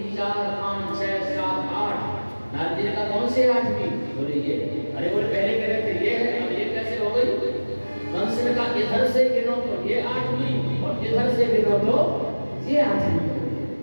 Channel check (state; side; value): inverted; both; correlation -1.00